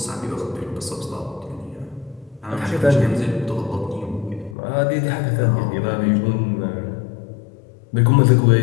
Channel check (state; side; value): drops out; right; at 4.5 s